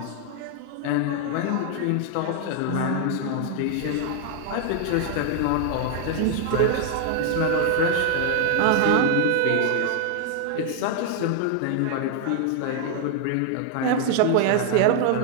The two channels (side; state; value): both; different; correlation 0.00